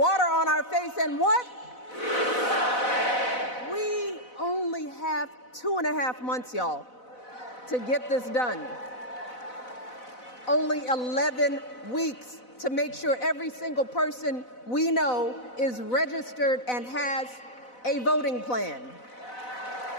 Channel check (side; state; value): right; late; 4.0 ms